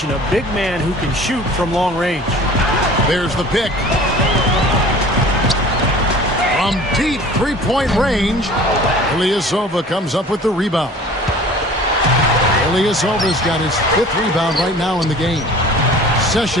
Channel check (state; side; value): normal; both; correlation 0.45